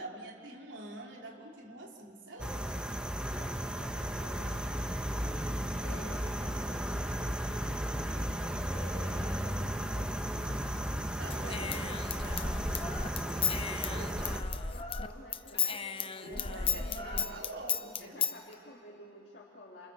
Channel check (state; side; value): normal; both; correlation 0.56